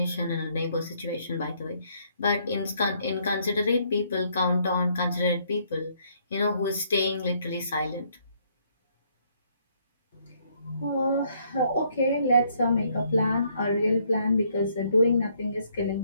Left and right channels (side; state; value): both; inverted; correlation -0.69